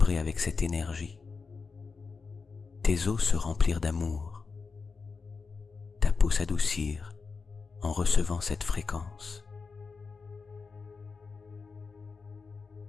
avec cette énergie. Tes os se remplir d'amour, ta peau s'adoucir en recevant cette fréquence.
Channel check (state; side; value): quieter; right; 4.8 dB